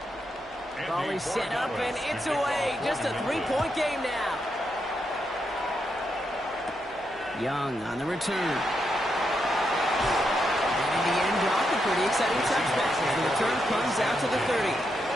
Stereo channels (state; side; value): noise; left; hum, 27 dB below the sound